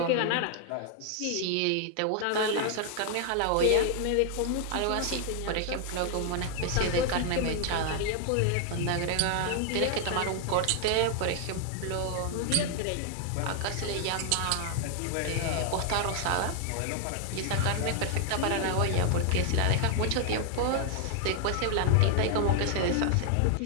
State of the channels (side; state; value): both; different; correlation 0.00